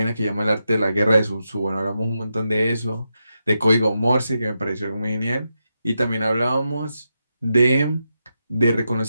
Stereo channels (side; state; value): both; inverted; correlation -0.87